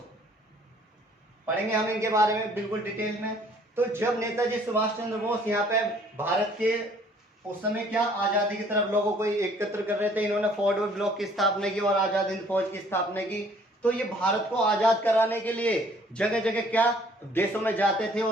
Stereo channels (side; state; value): both; normal; correlation 0.58